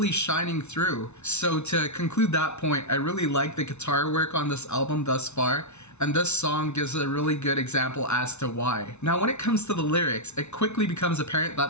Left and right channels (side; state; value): right; late; 0.81 ms